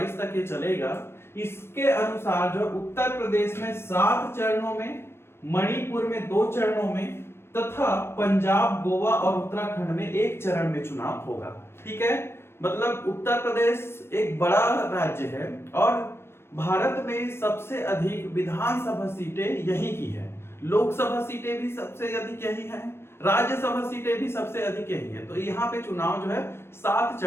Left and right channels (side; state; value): right; late; 0.12 ms